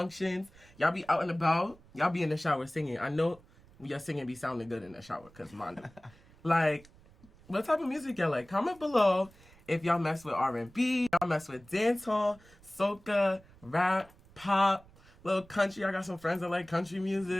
Y'all be out and about? Y'all be in the shower singing? I know your singing be sounding good in the shower, because mine do. Like, what type of music y'all like? Comment below if y'all mess with R&B, y'all mess with dancehall, soca, rap, pop, little country. I got some friends that like country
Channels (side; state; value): right; noise; rumble, 25 dB below the sound